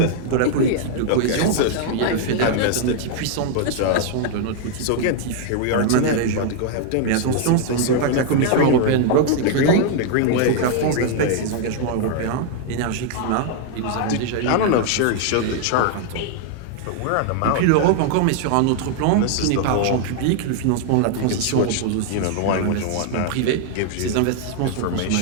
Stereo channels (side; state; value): both; different; correlation 0.00